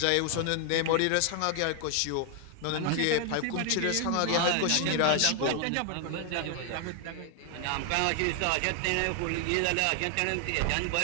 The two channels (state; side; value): different; both; correlation 0.00